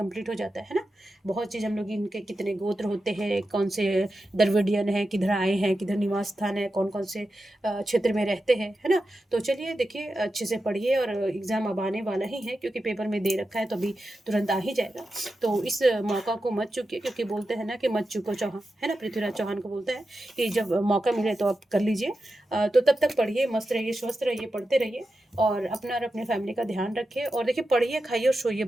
हो जाता है ना। बहुत चीज़ हम लोग इनके कितने गोत्र होते हैं, कौन से द्रविडियन है, किधर आए हैं, किधर निवास स्थान है, कौन कौन से क्षेत्र में रहते हैं, है ना। तो चलिए देखिए अच्छे से पढ़िए, और एग्ज़ाम अब आने वाला ही है, क्योंकि पेपर में दे रखा है तो अभी तुरंत आ ही जाएगा। तो इस मौका को मत चूकिए, क्योंकि बोलते हैं ना कि मत चूको चौहान, है ना, पृथ्वीराज चौहान को बोलता है कि जब मौका मिले तो आप कर लीजिए। तो तब तक पढ़िए, मस्त रहिए, स्वस्थ रहिए, पढ़ते रहिए, और अपना और अपने फैमिली का ध्यान रखिए, और देखिए पढ़िए, खाइए और सोइए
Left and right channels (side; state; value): both; normal; correlation 0.90